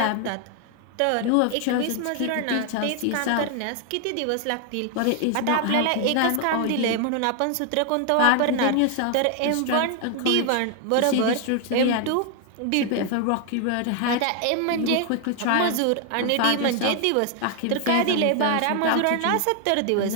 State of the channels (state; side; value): different; both; correlation 0.00